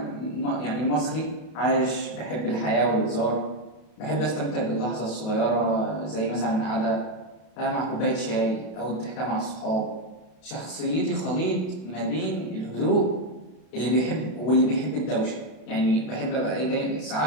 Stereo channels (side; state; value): right; late; 32 ms